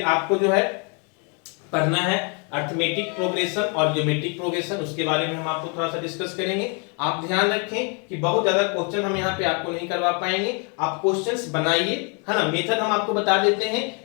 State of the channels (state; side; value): quieter; right; 36.0 dB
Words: आपको जो है पढ़ना है अरिथमेटिक प्रोग्रेशन और ज्योमेट्रिक प्रोग्रेशन, उसके बारे में हम आपको थोड़ा सा डिस्कस करेंगे। आप ध्यान रखें कि बहुत ज्यादा क्वेश्चन हम यहाँ पे आपको नहीं करवा पाएंगे, आप क्वेश्चंस बनाइए, है ना, मेथड हम आपको बता देते